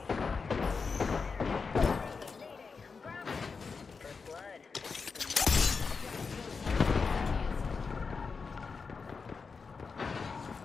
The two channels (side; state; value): right; quieter; 5.0 dB